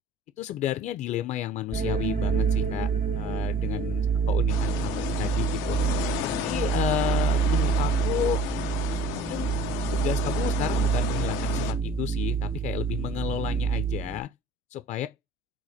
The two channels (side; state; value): both; normal; correlation 0.48